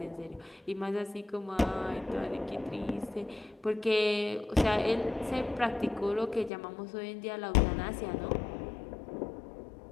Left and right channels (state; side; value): drops out; right; at 6.5 s